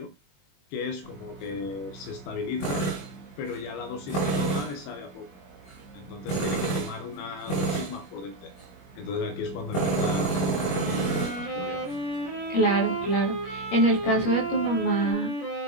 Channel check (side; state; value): right; late; 21 ms